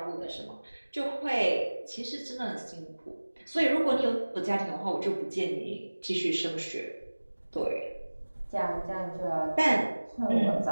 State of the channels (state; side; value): inverted; both; correlation -1.00